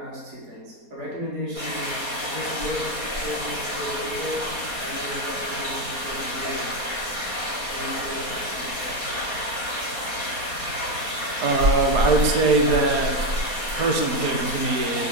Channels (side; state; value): left; late; 4.2 ms